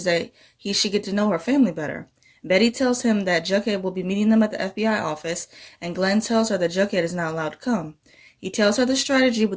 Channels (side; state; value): both; identical; correlation 1.00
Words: that he should get to know her family better. Betty tells him that Jughead will be meeting them at the FBI office, and Glenn tells her that Jughead is not allowed to come. He tells her the strategy